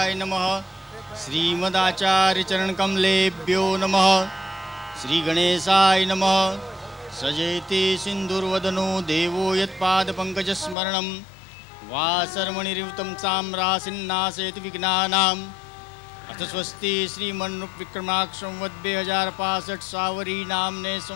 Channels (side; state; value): right; drops out; at 10.8 s